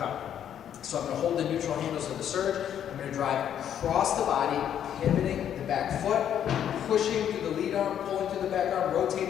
So I'm going to hold the neutral handles of the surge. I'm going to drive across the body, pivoting the back foot, pushing through the lead arm, pulling through the back arm,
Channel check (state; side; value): quieter; right; 9.7 dB